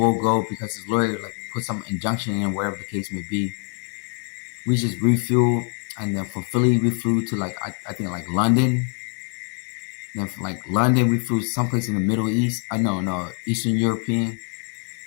go because his lawyer put some injunction in, whatever the case may be. We just refueled, and then from Philly we flew to I think London. Then from London we flew someplace in the Middle East. No, Eastern European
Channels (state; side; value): quieter; right; 38.9 dB